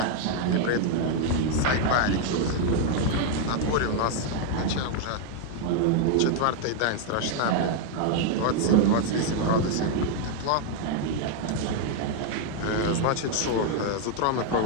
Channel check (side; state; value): both; different; correlation 0.00